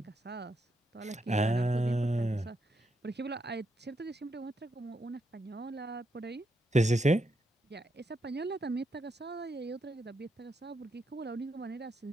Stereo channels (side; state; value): both; normal; correlation 0.81